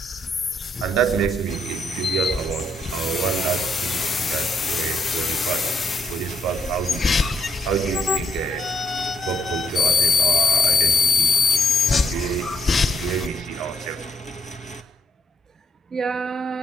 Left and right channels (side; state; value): both; normal; correlation 0.76